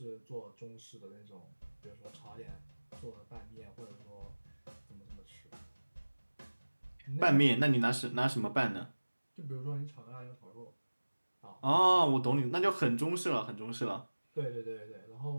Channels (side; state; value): both; inverted; correlation -1.00